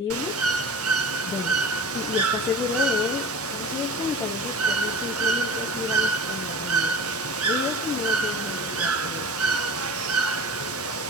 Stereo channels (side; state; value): both; normal; correlation 0.37